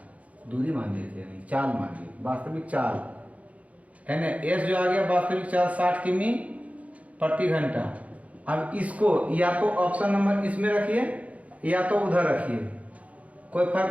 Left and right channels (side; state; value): left; late; 0.067 ms